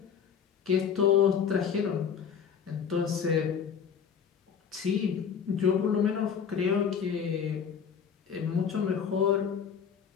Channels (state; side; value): quieter; right; 7.3 dB